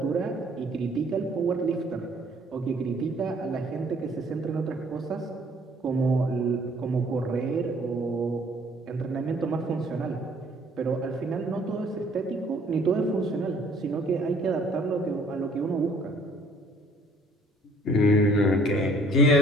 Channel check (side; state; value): both; normal; correlation 0.58